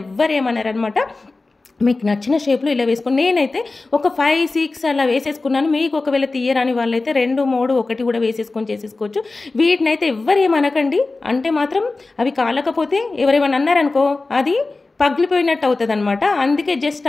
ఎవ్వరు ఏమన్నారనమాట. మీకు నచ్చిన షేప్లో ఇలా వేసుకొని, నేనైతే ఒక 5, 6 అలా వేసేసుకున్నాను. మీకు ఒకవేళ తీయరాని వాళ్ళైతే 2, 3, 1 కూడా వేసేసుకొని చేసేసుకోవచ్చు. వీటినైతే ఎవ్వరేమనకండి, అంటే మాత్రం అవి కాలకపోతే ఎవరేమన్నా అన్నారనుకో అది పగిలిపోయినట్టు అవుతుంది అనమాట. అందుకే జస్ట్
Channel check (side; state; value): right; quieter; 3.5 dB